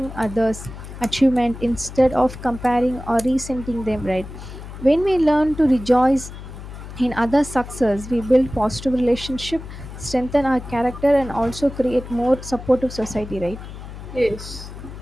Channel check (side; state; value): left; noise; hum, 12 dB below the sound